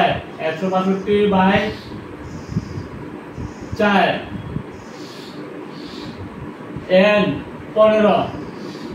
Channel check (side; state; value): both; identical; correlation 1.00